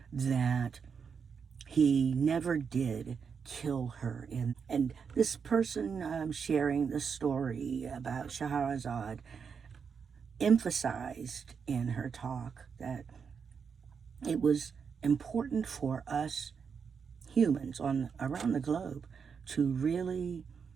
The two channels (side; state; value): left; quieter; 6.2 dB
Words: that he never did kill her. And this person sharing the story about Scheherazade emphasized in her talk that it was important for us humans around the globe to really